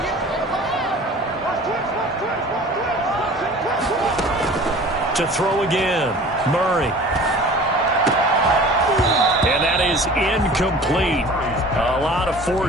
To throw again, Murray. And that is incomplete. A lot of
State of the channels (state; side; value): normal; both; correlation 0.43